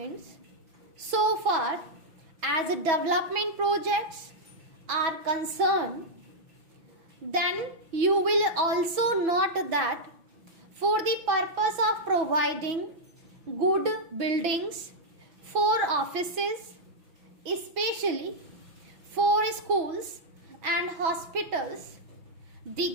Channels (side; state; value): left; late; 5.9 ms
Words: So far as development projects are concerned, then you will also note that for the purpose of providing good buildings for offices, especially for schools and hospitals, the